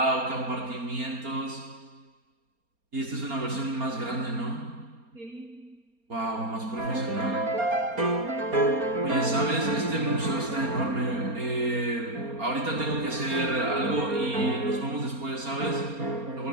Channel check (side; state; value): left; late; 4.3 ms